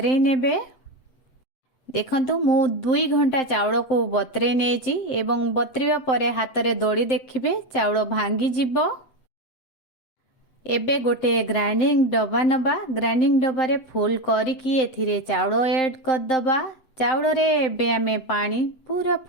नेबे। देखंतु मु 2 घंटा चाउल को बतरे नेछि एवं बतरिबा परे हाथ रे दड़ी देखिबे चाउल भांगी जिवो। एबे गोटे ग्राइंडिंग डब्बा नबा। ग्राइंडिंग डब्बा रे फुल करिकी एथिरे चाउल ऐड कर दबा। चाउल रे एबे आमे पानी पूरा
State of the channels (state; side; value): late; right; 8.0 ms